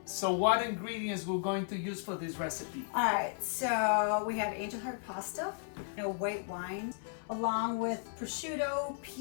So what ingredients we're going to use for this recipe? All right, so we have angel heart pasta, white wine, along with prosciutto,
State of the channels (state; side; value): silent; right; 55 dB below the other